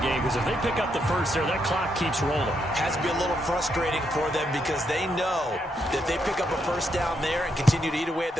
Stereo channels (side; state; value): both; normal; correlation 0.79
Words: game because if they pick up the first there, that clock keeps rolling. Has to be a little frustrating for them because they know that if they pick up a first down there and continue to eat away at